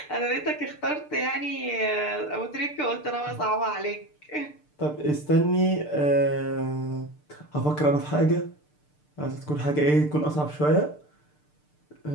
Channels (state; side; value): late; right; 6.7 ms